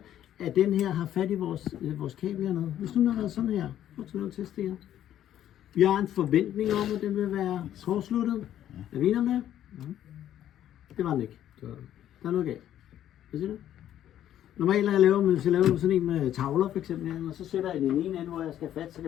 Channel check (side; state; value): right; quieter; 11.4 dB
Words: at den her har fat i vores kabel hernede? Hvis nu har været sådan her, prøv at lave en test her. Vi har en forventning om, at den vil være kortsluttet. Er vi enige om det? Det var den ikke. Der er noget galt. Hvad siger du? Normalt hvis jeg laver sådan en med tavler for eksempel, og så sætter jeg den ene ende, hvor jeg skal have fat, så kan